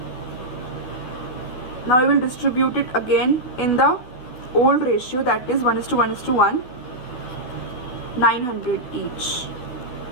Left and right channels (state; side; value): late; right; 12 ms